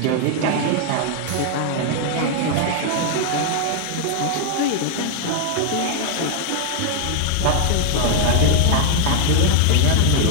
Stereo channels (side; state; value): both; different; correlation 0.00